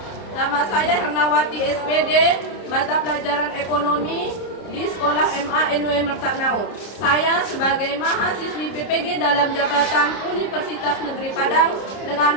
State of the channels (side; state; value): right; late; 30 ms